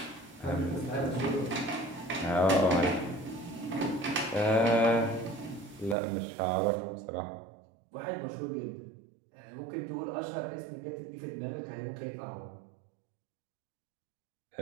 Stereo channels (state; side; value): drops out; left; at 6.0 s